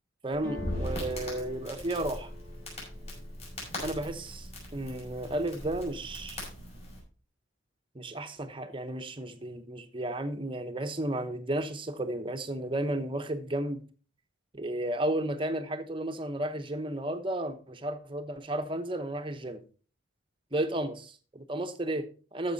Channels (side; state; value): both; normal; correlation 0.54